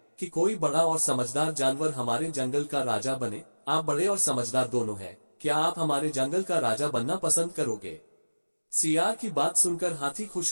कि कोई बड़ा और समझदार जानवर हमारे जंगल का राजा बने। आप बड़े और समझदार दोनों हैं, क्या आप हमारे जंगल का राजा बनना पसंद करोगे? सियार की बात सुनकर हाथी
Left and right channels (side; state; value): both; inverted; correlation -1.00